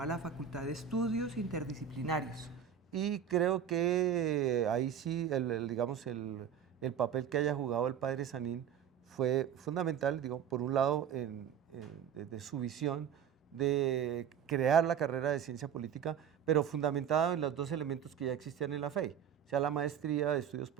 la Facultad de Estudios Interdisciplinarios. Y creo que ahí sí, digamos, el papel que haya jugado el padre Sanín fue fundamental, digo, por un lado, de su visión de crear la carrera de ciencia política, pero fundamentada en los dos elementos que ya existían en la FEI, o sea, la maestría de estudios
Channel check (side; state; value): left; quieter; 8.6 dB